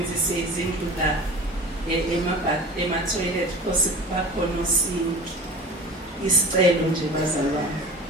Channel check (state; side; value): normal; both; correlation 0.38